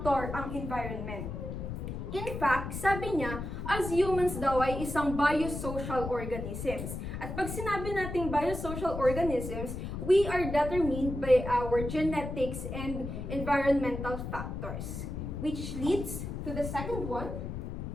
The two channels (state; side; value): noise; left; rumble, 6 dB below the sound